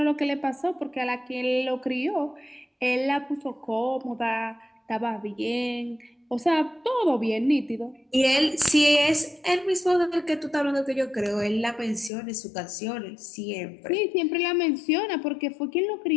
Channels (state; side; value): drops out; right; at 12.1 s